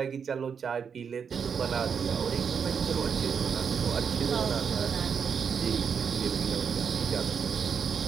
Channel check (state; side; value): quieter; left; 6.7 dB